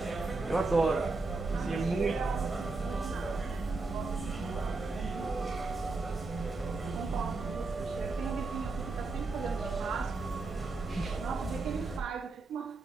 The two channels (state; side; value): quieter; left; 3.6 dB